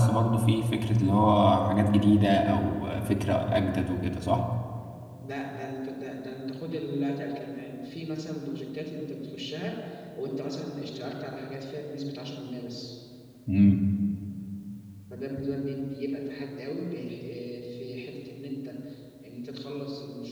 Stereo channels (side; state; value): both; identical; correlation 1.00